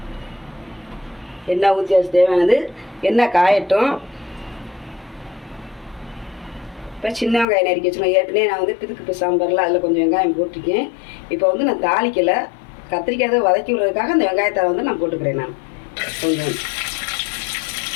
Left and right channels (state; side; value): drops out; right; at 7.5 s